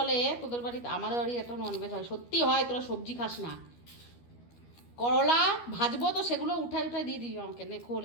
তোদের বাড়িতে, আমাদের বাড়ি এত ননভেজ হয়, সত্যি হয়, তোরা সবজি খাস না। করলা ভাজবো তো সেগুলো উঠাই দিয়ে দিবি আমাকে, নে খোল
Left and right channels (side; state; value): right; late; 12 ms